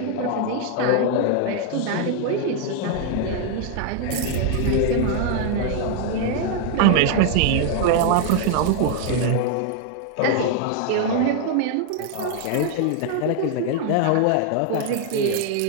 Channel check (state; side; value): different; both; correlation 0.00